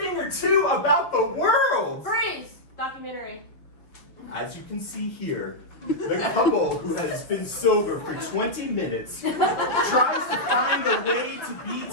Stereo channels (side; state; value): right; late; 6.0 ms